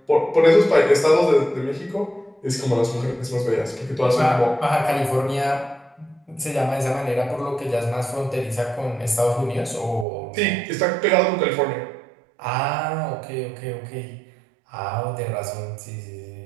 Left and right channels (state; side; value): drops out; left; at 10.1 s